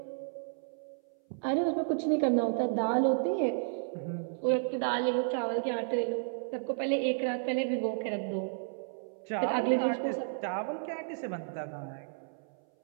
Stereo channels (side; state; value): left; silent; 56 dB below the other